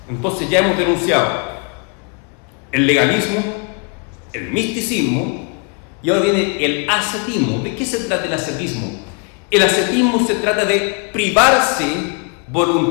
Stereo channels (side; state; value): right; quieter; 35.8 dB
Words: Entonces ya hemos denunciado el legalismo, el misticismo, y ahora viene el ascetismo. ¿De qué se trata el ascetismo? El ascetismo se trata de privarse